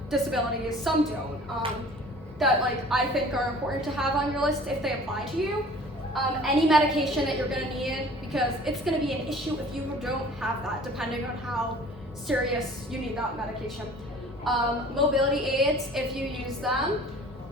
disabilities, some don't. That like, I think are important to have on your list if they apply to you. Any medication that you're gonna need, because it's gonna be an issue if you don't have that, depending on how serious you need that medication. Mobility aids, if you use them.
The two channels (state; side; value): normal; both; correlation 0.48